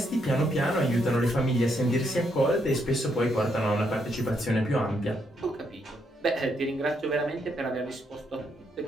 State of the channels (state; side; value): normal; both; correlation 0.76